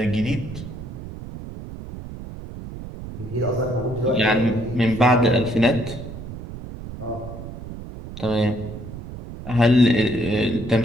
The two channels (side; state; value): right; noise; rumble, 11 dB below the sound